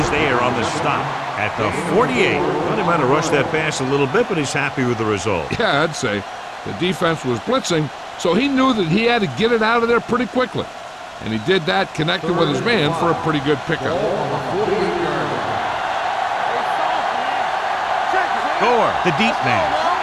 is there on the stop at the 48. Well, he might have rushed that pass a little bit, but he's happy with the result. Yeah, I'd say the defense was blitzing, so he knew that he had to get it out of there pretty quickly. And he did that, connected with his man for a pretty good pickup. Gore, the deep man,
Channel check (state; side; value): identical; both; correlation 1.00